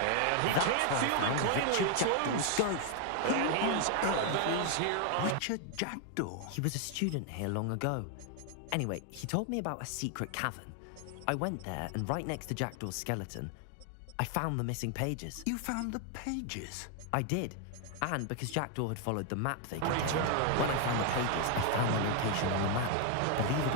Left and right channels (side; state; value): both; different; correlation 0.00